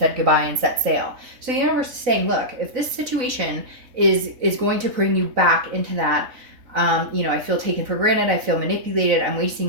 goodbye and set sail. So the universe is saying, look, if this situation is going to bring you back into that, you know, I feel taken for granted, I feel manipulated, I'm wasting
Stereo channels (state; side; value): late; left; 4.0 ms